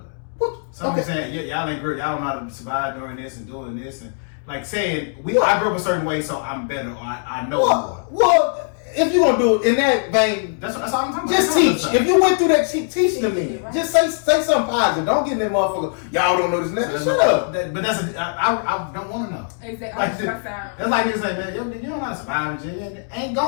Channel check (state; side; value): silent; right; digital silence